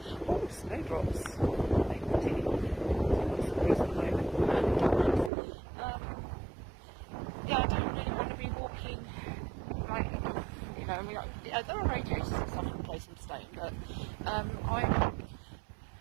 Oh, snowdrops. Yeah, I don't really want to be walking, like, you know, I mean, there are radiators and stuff in the place I'm staying, but I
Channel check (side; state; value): left; drops out; at 5.3 s